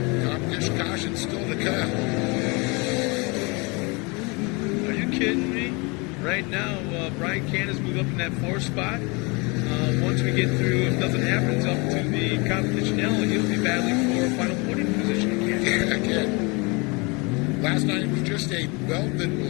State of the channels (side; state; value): right; quieter; 28.7 dB